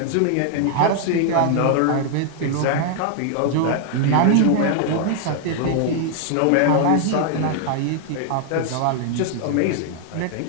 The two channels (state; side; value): different; both; correlation 0.00